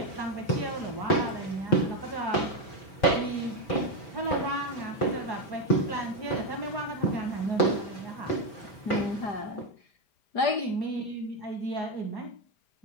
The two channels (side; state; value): right; late; 4.7 ms